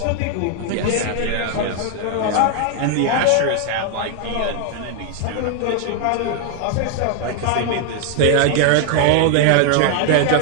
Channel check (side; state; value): both; different; correlation 0.00